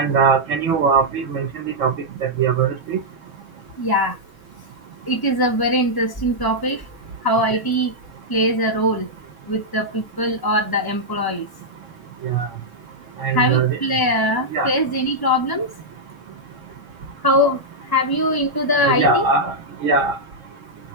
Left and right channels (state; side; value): late; right; 1.0 ms